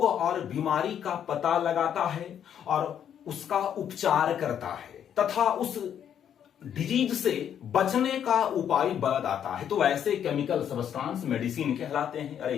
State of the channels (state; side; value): quieter; right; 9.2 dB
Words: और बीमारी का पता लगाता है और उसका उपचार करता है तथा उस डिजीज से बचने का उपाय बताता है। तो ऐसे केमिकल सब्सटेंस मेडिसिन कहलाते हैं। अरे